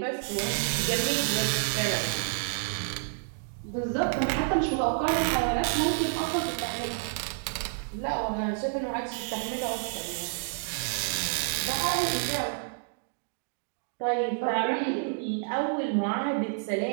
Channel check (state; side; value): silent; left; digital silence